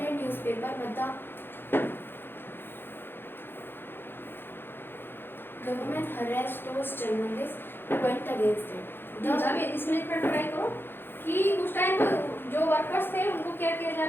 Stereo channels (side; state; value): right; late; 0.10 ms